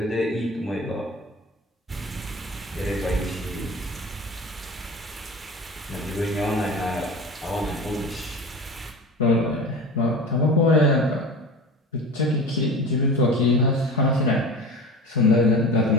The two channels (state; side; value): normal; both; correlation 0.34